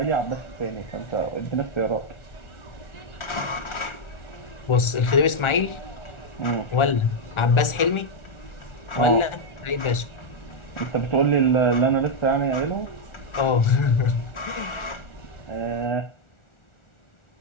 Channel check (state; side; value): late; right; 1.4 ms